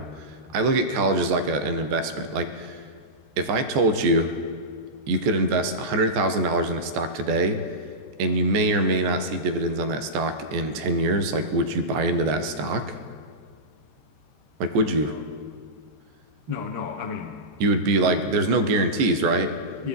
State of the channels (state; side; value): late; left; 14 ms